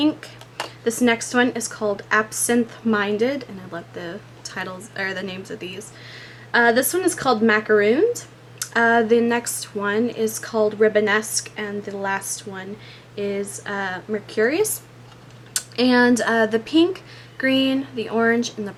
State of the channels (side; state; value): both; identical; correlation 1.00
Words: This next one is called Absinthe Minded, and I love the titles or the names of these. This one is called Macarooned. The next one is called Ribbonesque, and the last one is Mercurius. And the pink, green, the orange, and the